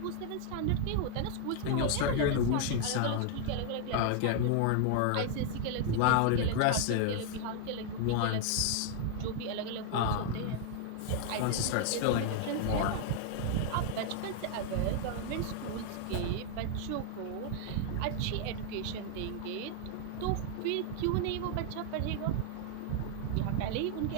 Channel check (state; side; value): different; both; correlation 0.00